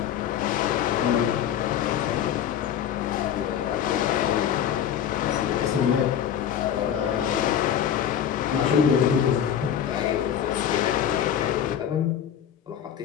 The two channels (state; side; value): quieter; right; 9.4 dB